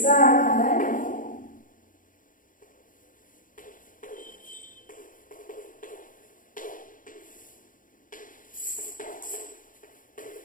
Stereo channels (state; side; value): late; right; 0.39 ms